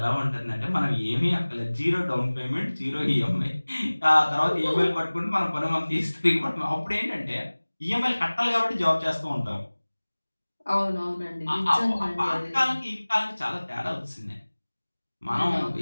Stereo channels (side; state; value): both; inverted; correlation -1.00